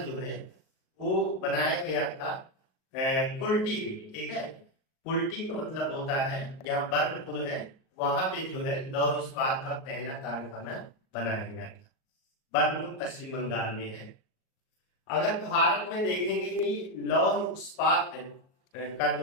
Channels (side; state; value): right; late; 38 ms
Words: जो है वो बनाया गया था कुल्टी। ठीक है, कुल्टी का मतलब होता है यहाँ बर्नपुर है, वहां पे जो है लौह इस्पात का पहला कारखाना बनाया गया था। बर्नपुर पश्चिम बंगाल में है। अगर भारत में देखेंगे कि लौह इस्पात का